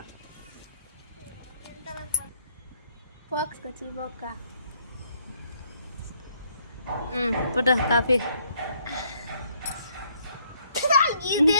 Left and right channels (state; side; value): inverted; both; correlation -0.68